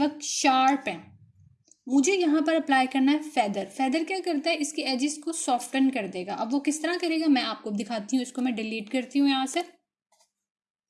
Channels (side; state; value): both; identical; correlation 1.00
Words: शार्प हैं। मुझे यहाँ पर अप्लाई करना है फेदर। फेदर क्या करता है, इसके एजेस को सॉफ्टन कर देगा। अब वो किस तरह करेगा मैं आपको दिखाती हूँ। इसको मैं डिलीट करती हूँ यहाँ से।